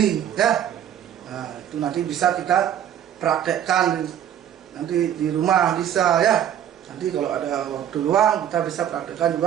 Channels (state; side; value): quieter; left; 10.2 dB